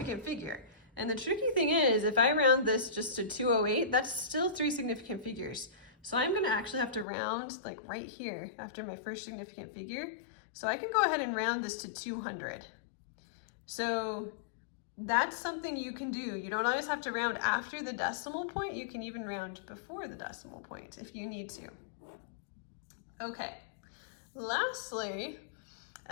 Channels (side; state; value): right; drops out; at 7.1 s